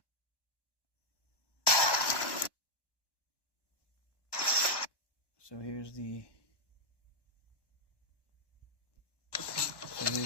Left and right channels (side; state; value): right; late; 1.1 ms